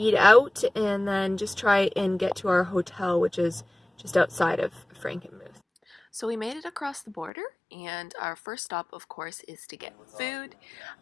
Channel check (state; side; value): drops out; right; at 7.3 s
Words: out and then just try and get to our hotel, which is just outside of Frankenmuth. So we made it across the border, and our first stop, of course, is to get food.